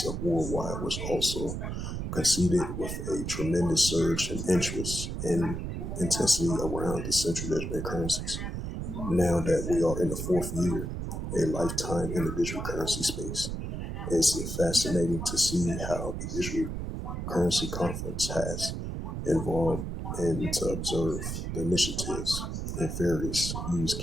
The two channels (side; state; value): right; noise; rumble, 4 dB below the sound